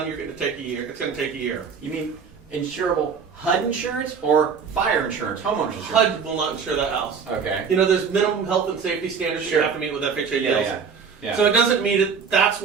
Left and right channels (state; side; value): quieter; left; 6.1 dB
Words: you're going to take a year. It's going to take a year. You mean insurable HUD insurance or fire insurance, homeowners insurance? HUD will not insure that house. Okay. There's minimum health and safety standards you have to meet with FHA deals. Yeah. So it doesn't mean it. That's